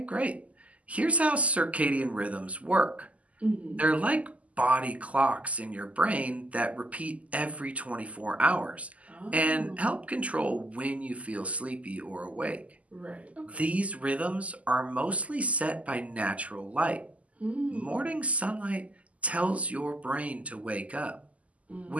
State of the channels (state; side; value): late; left; 0.069 ms